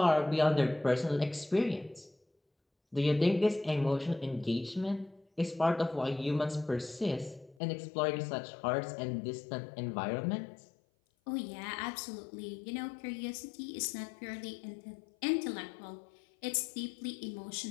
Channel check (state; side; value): drops out; right; at 7.6 s